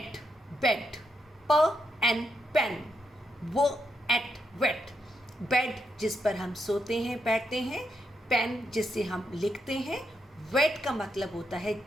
bed, p and pen, w, et, wet. Bed जिस पर हम सोते हैं बैठते हैं, पेन जिससे हम लिखते हैं, wet का मतलब होता है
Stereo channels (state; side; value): normal; both; correlation 0.82